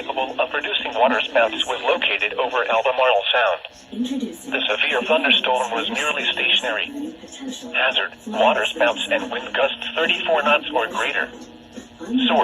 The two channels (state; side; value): identical; both; correlation 1.00